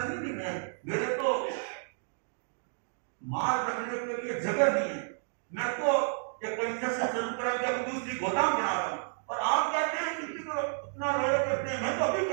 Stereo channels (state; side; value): silent; left; digital silence